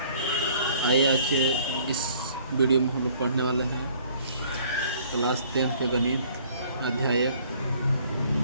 आइए आज के इस वीडियो में हम लोग पढ़ने वाले हैं क्लास 10 के गणित अध्याय 1।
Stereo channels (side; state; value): both; inverted; correlation -0.57